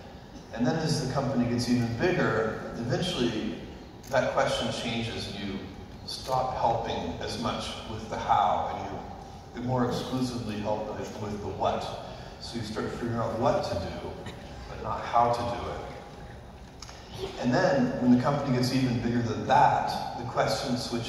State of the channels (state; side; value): identical; both; correlation 1.00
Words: And then as the company gets even bigger, eventually that question changes, and you stop helping as much with the how, and you more exclusively help with the what. So you start figuring out what to do, but not how to do it. And then, when the company gets even bigger than that, the question